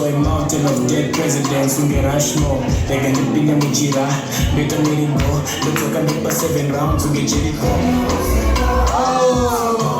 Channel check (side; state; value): both; identical; correlation 1.00